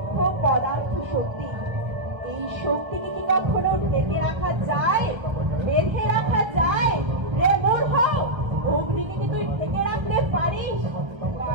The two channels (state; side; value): late; left; 1.3 ms